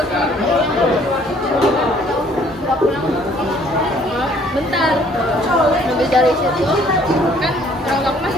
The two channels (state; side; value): normal; both; correlation 0.60